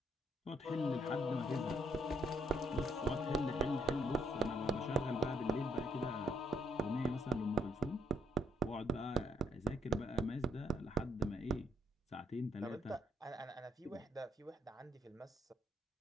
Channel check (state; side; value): normal; both; correlation 0.72